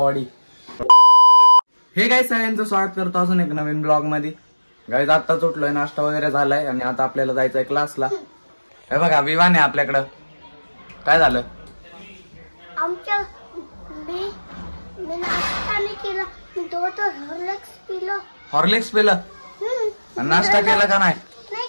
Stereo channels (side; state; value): both; inverted; correlation -1.00